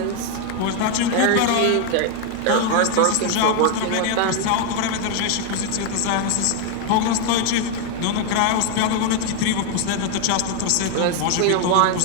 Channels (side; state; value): both; different; correlation 0.00